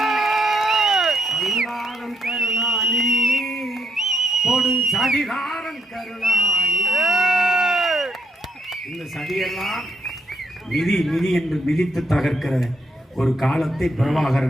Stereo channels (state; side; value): normal; both; correlation 0.74